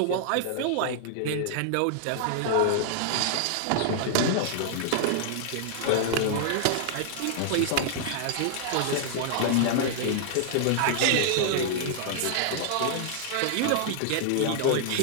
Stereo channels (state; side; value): different; both; correlation -0.01